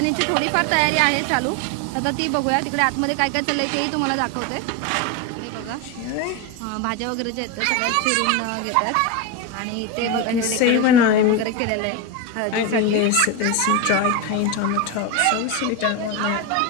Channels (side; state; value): both; different; correlation 0.03